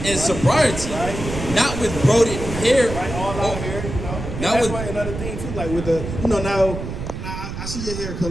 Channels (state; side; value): noise; right; rumble, 7 dB below the sound